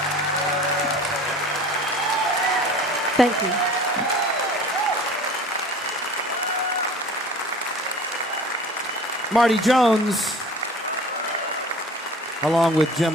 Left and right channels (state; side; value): normal; both; correlation 0.43